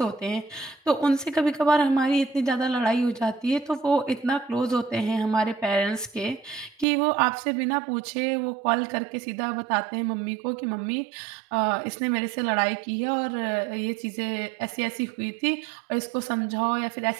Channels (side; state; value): left; drops out; at 6.9 s